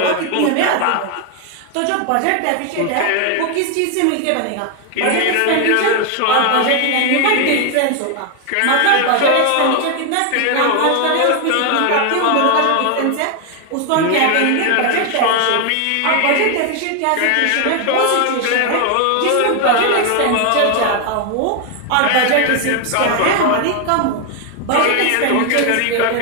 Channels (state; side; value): different; both; correlation 0.01